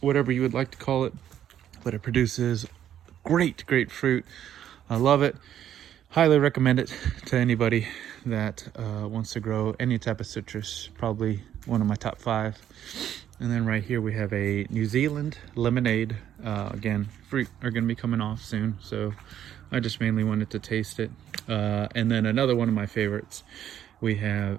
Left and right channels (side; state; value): left; quieter; 10.6 dB